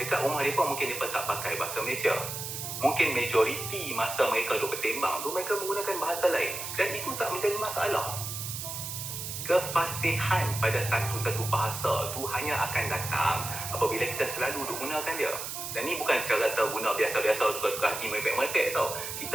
rumah mereka mungkin mereka tak pakai bahasa Malaysia. Mungkin majoriti masa mereka duduk bersembang tu mereka menggunakan bahasa lain. Dan itu tak menjadi masalah. Kefasihan pada satu-satu bahasa tu hanya akan datang apabila kita selalu duk gunakan dia. Dan ni bukan cara kita guna biasa-biasa suka-suka hati merepek-merepek tau.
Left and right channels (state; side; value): noise; right; hiss, 6 dB below the sound